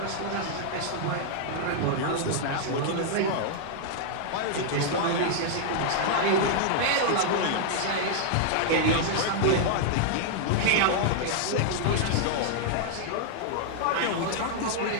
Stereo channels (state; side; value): different; both; correlation -0.01